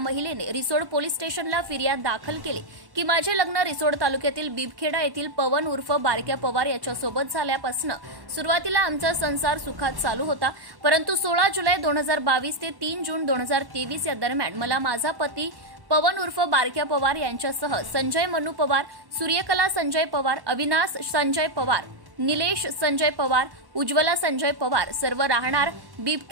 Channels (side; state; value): left; late; 1.1 ms